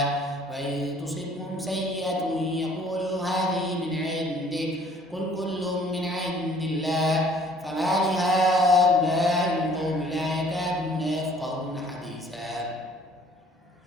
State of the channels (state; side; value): normal; both; correlation 0.57